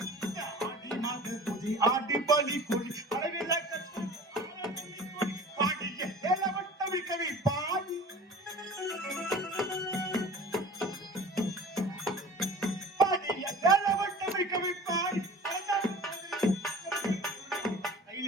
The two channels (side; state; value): both; normal; correlation 0.41